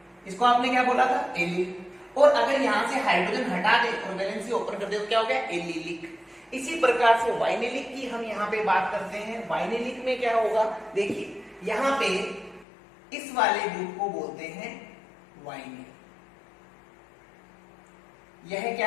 इसको आपने क्या बोला था, एलिल। और अगर यहां से हाइड्रोजन हटा दे और वैलेंसी ओपन कर दे तो क्या हो गया, एलिलिक। इसी प्रकार से वाइनिलिक की हम यहां पे बात करते हैं। वाइनिलिक में क्या होगा, देखिए यहां पे इस वाले ग्रुप को बोलते हैं वाइनिल, यह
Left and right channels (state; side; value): drops out; right; at 12.7 s